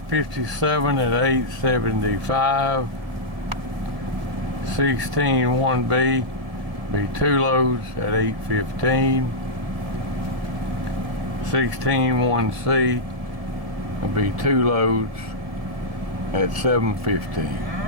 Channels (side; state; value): left; late; 1.7 ms